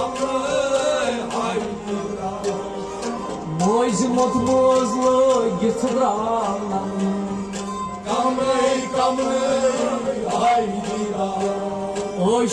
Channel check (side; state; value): both; identical; correlation 1.00